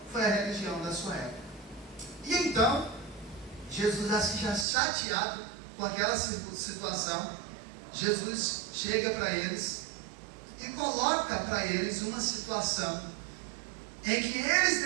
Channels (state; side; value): drops out; left; at 4.7 s